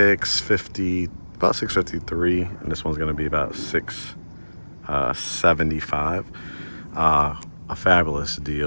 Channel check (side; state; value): both; inverted; correlation -1.00